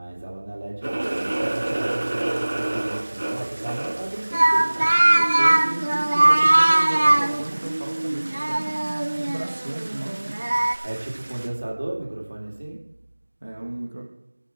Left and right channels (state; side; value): inverted; both; correlation -1.00